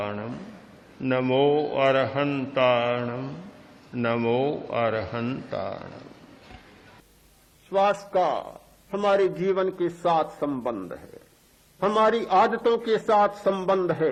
नमो अरहंताणम नमो अरहंताणम। श्वास का हमारे जीवन के साथ संबंध है, हमारी आदतों के साथ संबंध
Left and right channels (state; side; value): identical; both; correlation 1.00